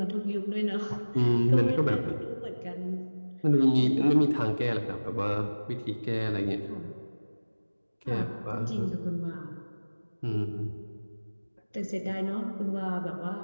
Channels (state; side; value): inverted; both; correlation -1.00